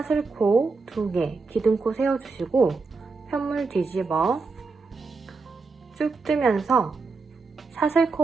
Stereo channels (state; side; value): quieter; left; 4.2 dB